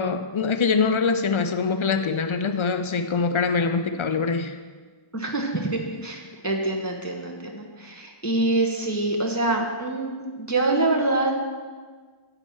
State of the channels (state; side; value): late; right; 1.3 ms